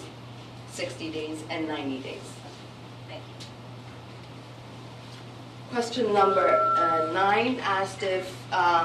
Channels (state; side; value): identical; both; correlation 1.00